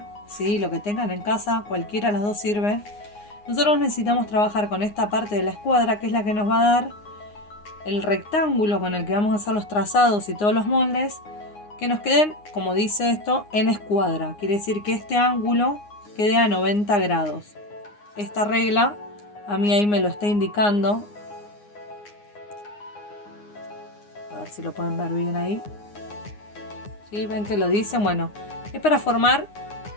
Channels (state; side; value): late; right; 9.7 ms